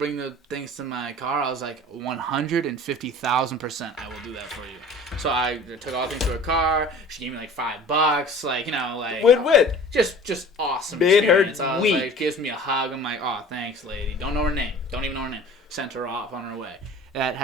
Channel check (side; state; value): both; normal; correlation 0.44